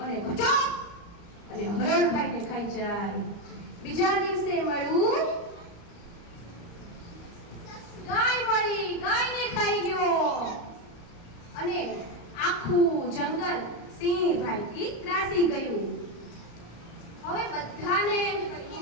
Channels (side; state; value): right; late; 34 ms